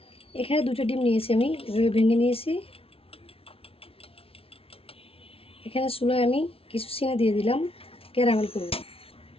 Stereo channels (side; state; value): right; late; 0.27 ms